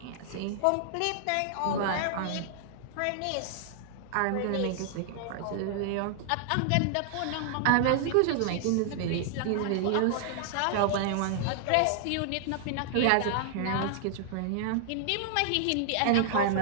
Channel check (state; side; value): different; both; correlation -0.01